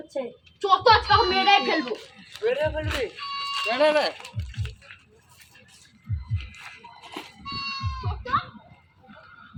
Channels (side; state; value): both; identical; correlation 1.00